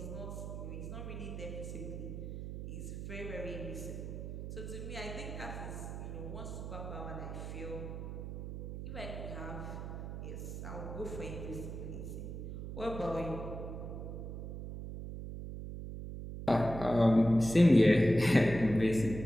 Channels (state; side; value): noise; right; hum, 7 dB below the sound